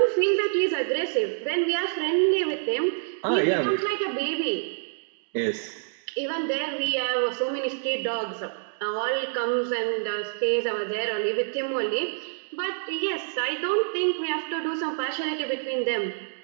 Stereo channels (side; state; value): left; silent; digital silence